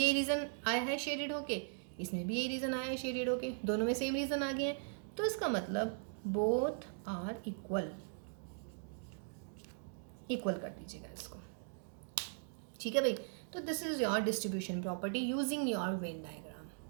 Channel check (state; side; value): silent; left; digital silence